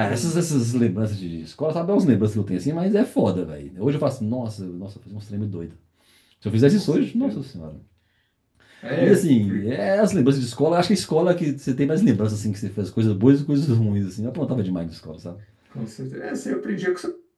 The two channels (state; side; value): identical; both; correlation 1.00